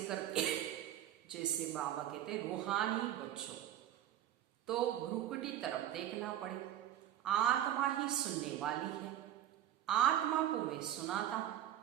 करती है। जैसे बाबा कहते रूहानी बच्चों, तो भ्रुकुटी तरफ देखना पड़े। आत्मा ही सुनने वाली है, आत्मा को मैं सुनाता हूं,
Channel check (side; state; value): left; quieter; 11.7 dB